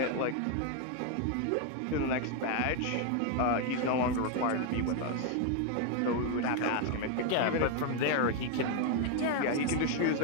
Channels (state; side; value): different; both; correlation 0.01